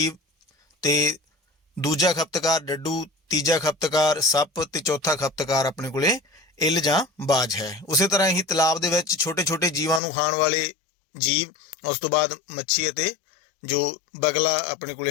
ਤੇ ਦੂਜਾ ਖਪਤਕਾਰ ਡੱਡੂ, ਤੀਜਾ ਖਪਤਕਾਰ ਸੱਪ ਤੇ ਚੌਥਾ ਖਪਤਕਾਰ ਆਪਣੇ ਕੋਲੇ ਇੱਲ ਜਾਂ ਬਾਜ ਹੈ। ਉਸੇ ਤਰ੍ਹਾਂ ਹੀ ਤਲਾਬ ਦੇ ਵਿੱਚ ਛੋਟੇ ਛੋਟੇ ਜੀਵਾਂ ਨੂੰ ਖਾਣ ਵਾਲੇ ਜੀਵ, ਉਸ ਤੋਂ ਬਾਅਦ ਮੱਛੀ ਅਤੇ ਜੋ ਬਗਲਾ ਆਪਣੇ ਕੋਲੇ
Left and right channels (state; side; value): drops out; right; at 10.0 s